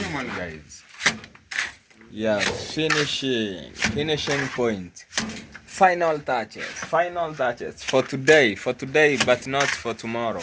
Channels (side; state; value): both; identical; correlation 1.00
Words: guys. Yeah, finishing point, final touches for today, but not for tomorrow.